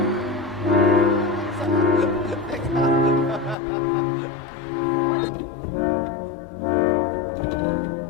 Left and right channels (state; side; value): drops out; right; at 3.6 s